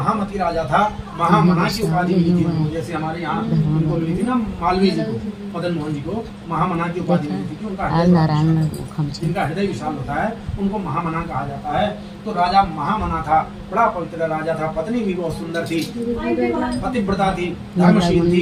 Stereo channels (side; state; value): both; identical; correlation 1.00